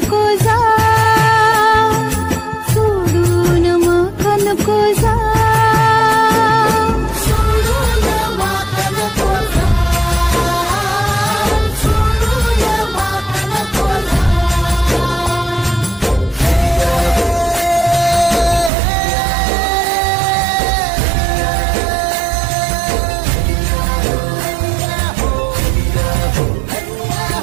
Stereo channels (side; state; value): left; drops out; at 18.7 s